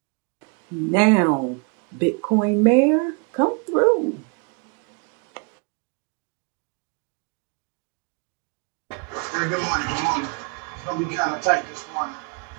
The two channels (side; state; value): left; quieter; 33.1 dB